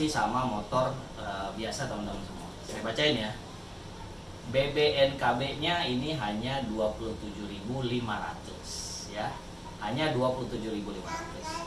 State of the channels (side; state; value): both; identical; correlation 1.00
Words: sama motor biasa teman-teman semua. Saya bacain ya. BBNKB-nya ini hanya 27.500 ya. Hanya